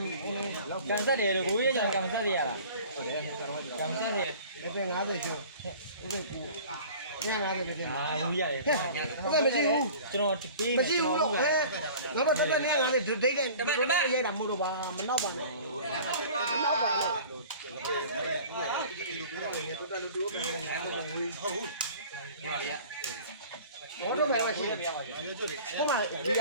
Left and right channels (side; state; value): both; inverted; correlation -0.44